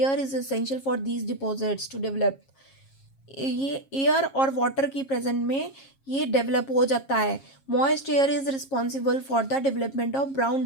is essential for these deposits to develop. ये एयर और वाटर की प्रेजेंट में ये डेवलप हो जाता है। Moist air is responsible for the development of brown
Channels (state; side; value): late; right; 7.4 ms